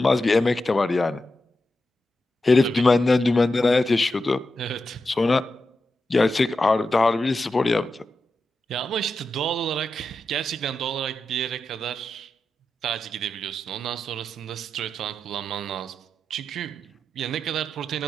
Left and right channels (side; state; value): both; normal; correlation 0.89